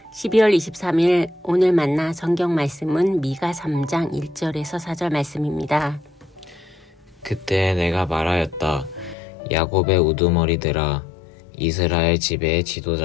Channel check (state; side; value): drops out; right; at 9.2 s